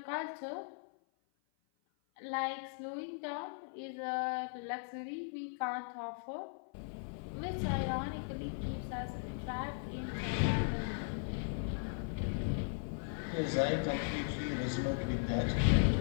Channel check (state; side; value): silent; right; 53 dB below the other